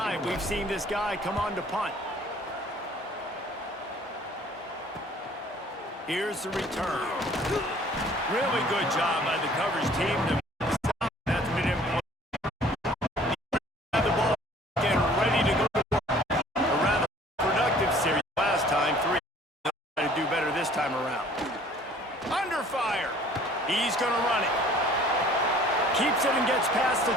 we've seen this guy come on to punt. Here's the return. Really good job by the coverage team to stop. That's been important. Have the ball again ready to go to work. A rather productive series last time. 3. Try to do better this time around. Under fire. He's going to run it. Keeps it and gets past the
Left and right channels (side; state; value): both; normal; correlation 0.53